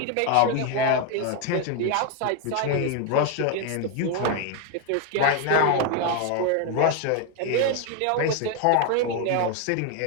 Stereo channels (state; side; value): different; both; correlation 0.01